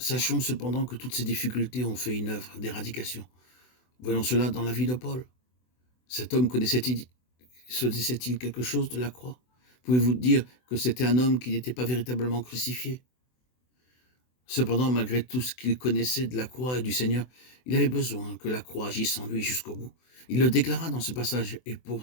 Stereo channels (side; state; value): right; late; 24 ms